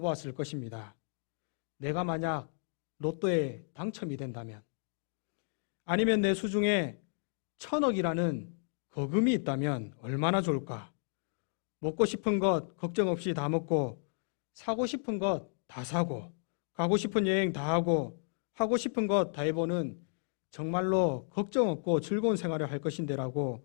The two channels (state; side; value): silent; right; digital silence